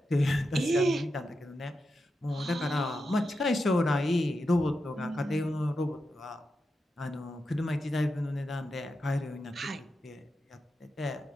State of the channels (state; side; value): normal; both; correlation 0.88